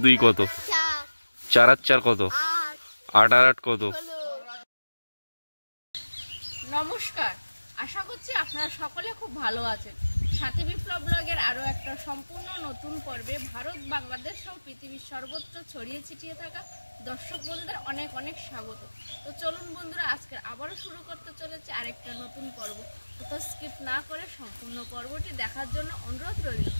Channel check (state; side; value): inverted; both; correlation -1.00